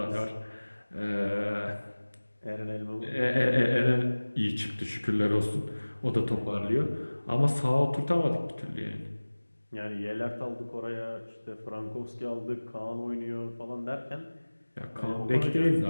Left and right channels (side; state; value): both; inverted; correlation -1.00